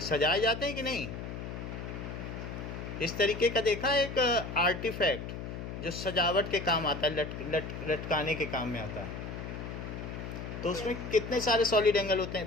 सजाए जाते हैं कि नहीं। इस तरीके का देखा एक आर्टिफैक्ट जो सजावट के काम आता है, लटकाने के काम में आता है। तो उसमें कितने सारे सॉलिड एंगल होते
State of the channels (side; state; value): left; noise; hum, 7 dB below the sound